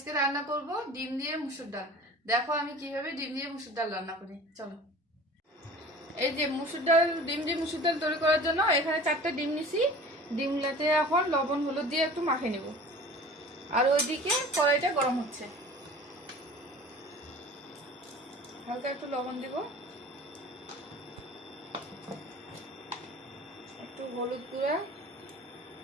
রান্না করব ডিম দিয়ে মুসুর ডাল। দেখো আমি কিভাবে ডিম দিয়ে মুসুর ডাল রান্না করি। চলো। এই যে ডিম দিয়ে মুসুর ডাল তৈরি করার জন্য এখানে 4টা ডিম নিছি। ডিমগুলোতে এখন লবণ হলুদ দিয়ে একটু মাখিয়ে নেব। আর ওইদিকে কড়াইটা গরম হচ্ছে, হালকা একটু লবণ দিব, একটু হলুদ গুঁড়া,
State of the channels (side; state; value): both; normal; correlation 0.42